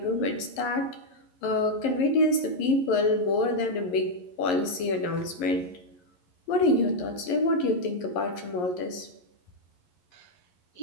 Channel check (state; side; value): late; right; 11 ms